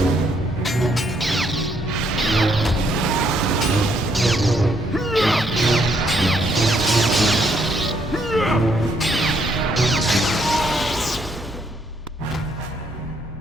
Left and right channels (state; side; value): normal; both; correlation 0.71